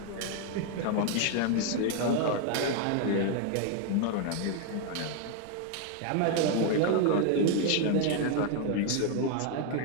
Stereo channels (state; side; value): different; both; correlation 0.00